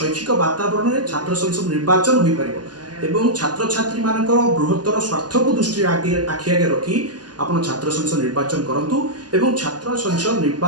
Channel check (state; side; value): late; left; 0.70 ms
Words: वातावरण में छात्र संसद निर्वाचन हो पार एवं छात्र छात्री मान बृहत्तर स्वार्थ को दृष्टि आखि आगे रखी आपण छात्र संसद निर्वाचन करूँ एवं छात्र संसद